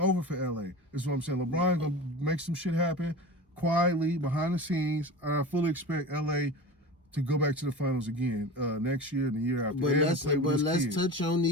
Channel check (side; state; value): both; normal; correlation 0.32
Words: for LA. That's what I'm saying. LeBron gonna make some shit happen quietly behind the scenes. I fully expect LA to go back to the finals again next year and the year after. But let's touch on